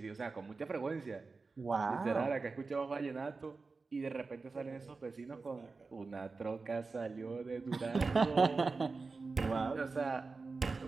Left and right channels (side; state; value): left; quieter; 4.1 dB